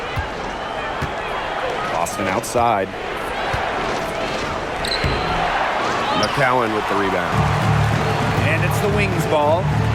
Boston outside. McCowan with the rebound. And it's the Wings ball.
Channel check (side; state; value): both; identical; correlation 1.00